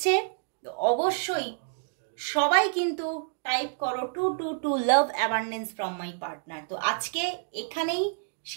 তো অবশ্যই সবাই কিন্তু টাইপ করো 222 লাভ অ্যাবান্ডেন্স ফ্রম মাই পার্টনার। তো আজকে এখানেই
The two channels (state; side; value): silent; left; digital silence